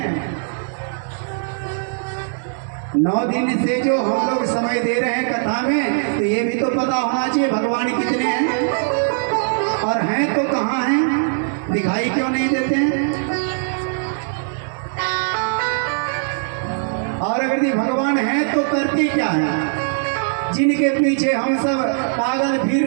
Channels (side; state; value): left; silent; digital silence